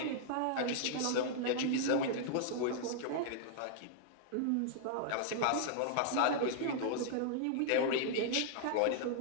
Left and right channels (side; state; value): both; different; correlation -0.01